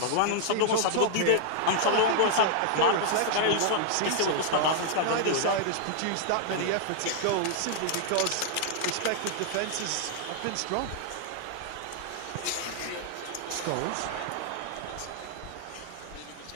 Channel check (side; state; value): both; different; correlation -0.01